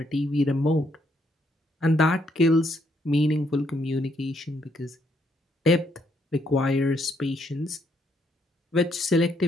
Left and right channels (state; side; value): normal; both; correlation 0.73